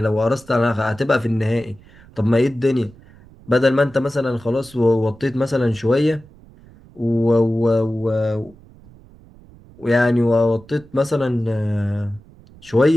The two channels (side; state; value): right; noise; rumble, 24 dB below the sound